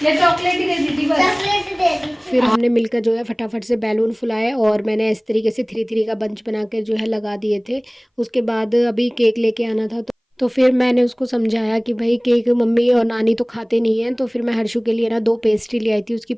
या चॉकलेट ही दे दी थी बस? चॉकलेट दे दी। फिर हमने मिलकर जो है फटाफट से बैलून फुलाए, और मैंने इस तरीके से 3-3 का बंच बना कर जो है लगा दिए थे। उसके बाद अभी केक लेके आना था, तो फिर मैंने उसको समझाया कि भाई केक मम्मी और नानी तो खाते नहीं हैं। तो फिर मैं हर्षु के लिए ना 2 पेस्ट्री ले आई थी उसकी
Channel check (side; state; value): both; identical; correlation 1.00